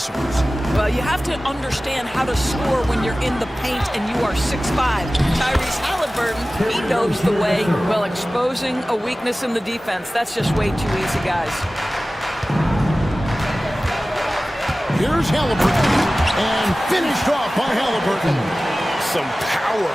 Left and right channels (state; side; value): normal; both; correlation 0.97